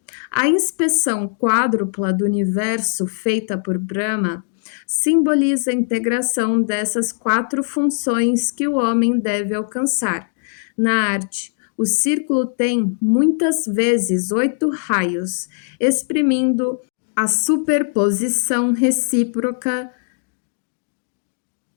A inspeção quádrupla do universo feita por Brahma simboliza a integração dessas 4 funções que o homem deve alcançar. Na arte, o círculo tem muitas vezes 8 raios, exprimindo a superposição recíproca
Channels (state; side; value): silent; right; digital silence